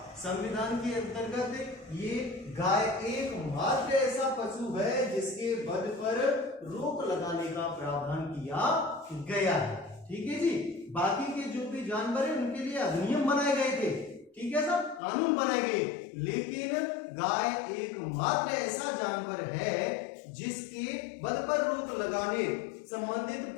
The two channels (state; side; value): drops out; right; at 15.0 s